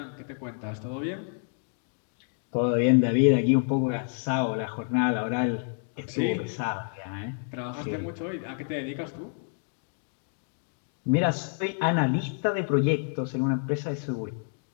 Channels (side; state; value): right; silent; 55 dB below the other